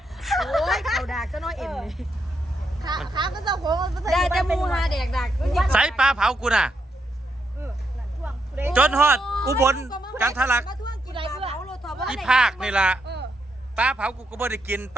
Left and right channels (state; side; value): normal; both; correlation 0.80